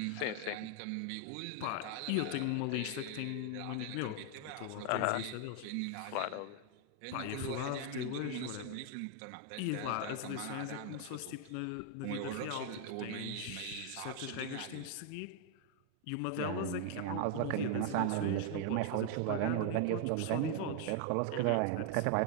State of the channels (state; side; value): different; both; correlation 0.00